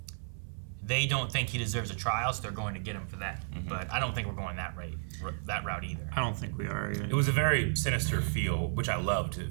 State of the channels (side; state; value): left; silent; 56 dB below the other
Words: they don't think he deserves a trial, so they're going to get him for that. But I don't think we're going that route either. I don't think we are either. It was a very sinister feel, which I loved.